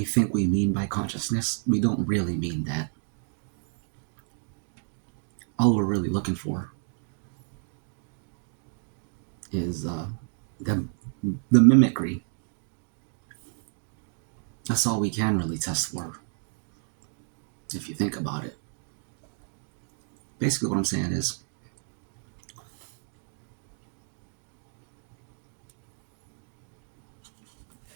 think we mean by consciousness, we don't really mean that. All we're really looking for is the mimicry. That's all we can really test for, if you think about it. Basically what I'm saying is,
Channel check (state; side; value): silent; left; 58 dB below the other